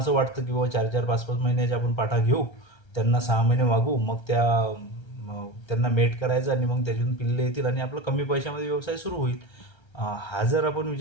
वाटतं की बाबा 4-4, 5-5 महिन्याच्या आपण पाठा घेऊ, त्यांना 6 महिने वागू, मग त्यांना मेट करायचं आणि मग त्याच्यातून पिल्ले येतील आणि आपलं कमी पैशामध्ये व्यवसाय सुरू होईल. हा जर आपण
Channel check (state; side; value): late; right; 1.3 ms